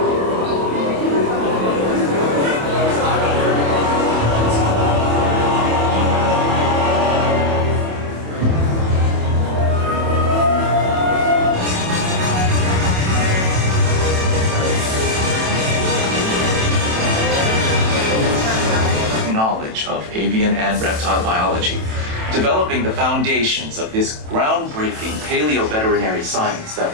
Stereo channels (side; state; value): left; late; 27 ms